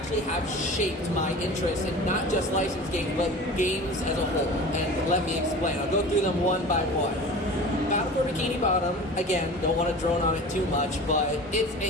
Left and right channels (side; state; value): both; normal; correlation 0.37